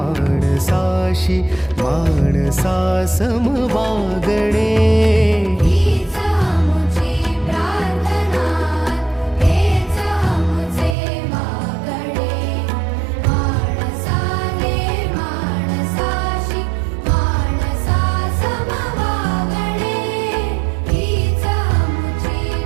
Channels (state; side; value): drops out; left; at 11.0 s